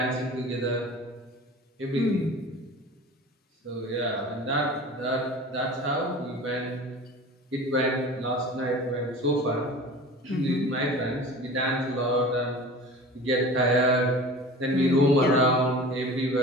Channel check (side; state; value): both; normal; correlation 0.38